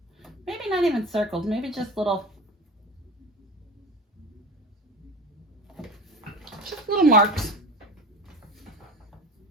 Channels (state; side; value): normal; both; correlation 0.33